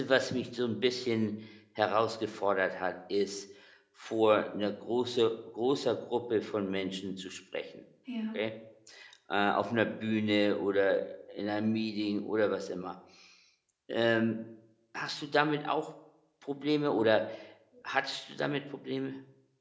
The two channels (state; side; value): identical; both; correlation 1.00